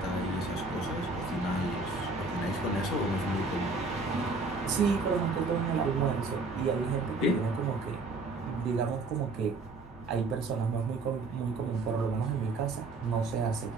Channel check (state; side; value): quieter; left; 3.5 dB